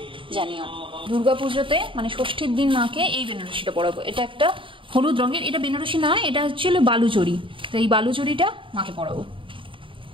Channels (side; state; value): left; late; 0.25 ms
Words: জানিও। দুর্গা পুজোতে মানে ষষ্ঠীর দিন মাকে এই বেনারসিটা পরাবো। এটা একটা হলুদ রঙের, এটা বেনারসি না, এটা হচ্ছে বালুচরি। তো এই বালুচরিটা মাকে পরাবো।